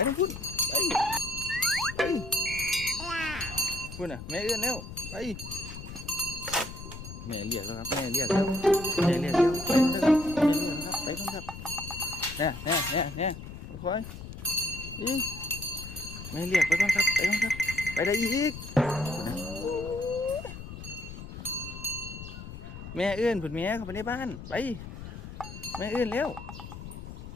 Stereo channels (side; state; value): left; noise; rumble, 11 dB below the sound